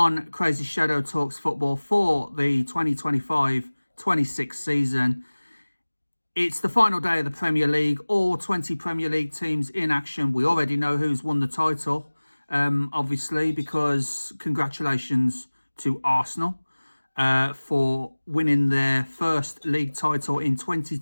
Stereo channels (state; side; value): inverted; both; correlation -1.00